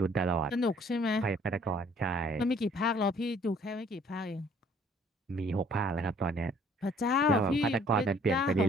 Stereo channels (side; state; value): both; normal; correlation 0.59